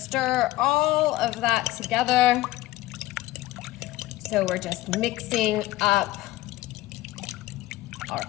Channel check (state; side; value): quieter; right; 17.0 dB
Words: all of that together. So we're just mixing up our